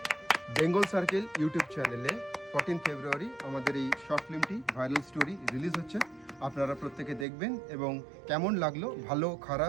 বেঙ্গল সার্কেল ইউটিউব চ্যানেলে 14 ফেব্রুয়ারি আমাদের এই শর্ট ফিল্মটি ভাইরাল স্টোরি রিলিজ হচ্ছে। আপনারা প্রত্যেকে দেখবেন এবং কেমন লাগলো, ভালো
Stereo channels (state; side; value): drops out; left; at 7.2 s